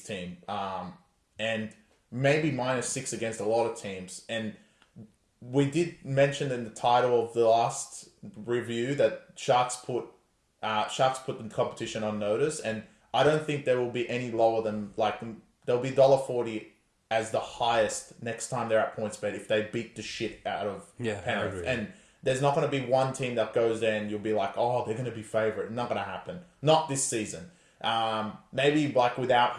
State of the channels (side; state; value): both; identical; correlation 1.00